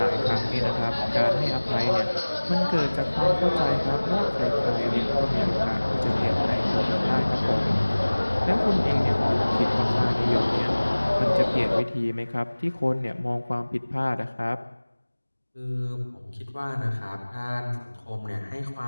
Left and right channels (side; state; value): both; inverted; correlation -1.00